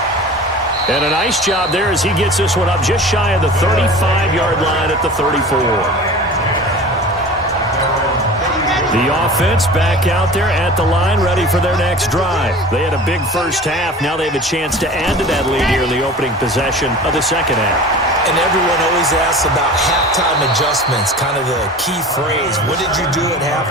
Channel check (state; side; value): normal; both; correlation 0.38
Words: And a nice job there as he gets this one up just shy of the 35-yard line at the 34. The offense back out there at the line, ready for their next drive. They had a big first half. Now they have a chance to add to that lead here in the opening possession of the second half. And everyone always asks about halftime adjustments, kind of the key phrase. What did you do at